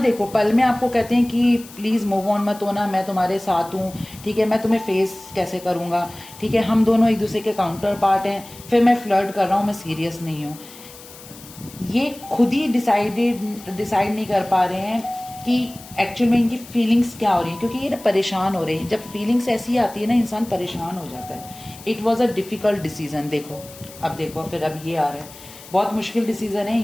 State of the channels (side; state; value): left; noise; hiss, 18 dB below the sound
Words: देखो पल में आपको कहते हैं कि प्लीज़ मूव ऑन मत होना, मैं तुम्हारे साथ हूँ, ठीक है, मैं तुम्हें फेस कैसे करूँगा, ठीक है, हम दोनों एक दूसरे के काउंटर पार्ट हैं, फिर मैं फ्लर्ट कर रहा हूँ, मैं सीरियस नहीं हूँ। ये खुद ही डिसाइड नहीं कर पा रहे हैं कि एक्चुअल में इनकी फीलिंग्स क्या हो रही हैं, क्योंकि ये ना परेशान हो रहे हैं। जब फीलिंग्स ऐसी आती है ना, इंसान परेशान हो जाता है। It was a difficult decision. देखो अब देखो फिर अब ये आ रहा है, बहुत मुश्किल डिसीजन है